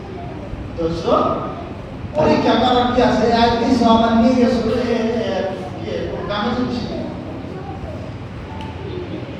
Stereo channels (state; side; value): identical; both; correlation 1.00